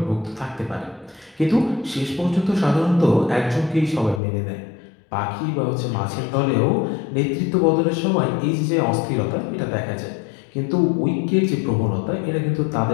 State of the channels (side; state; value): right; drops out; at 4.2 s